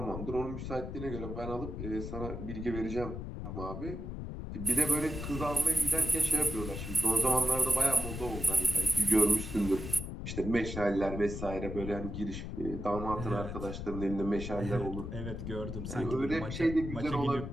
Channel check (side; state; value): left; noise; rumble, 6 dB below the sound